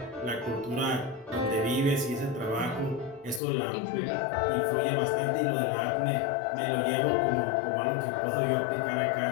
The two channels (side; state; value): right; drops out; at 3.4 s